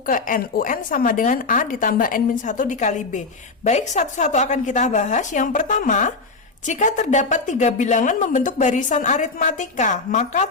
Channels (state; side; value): quieter; right; 3.9 dB